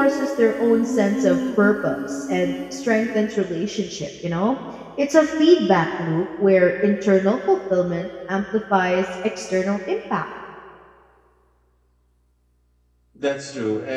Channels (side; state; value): both; identical; correlation 1.00